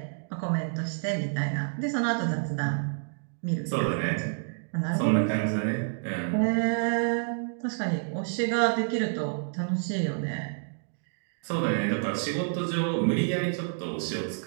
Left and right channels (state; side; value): silent; left; digital silence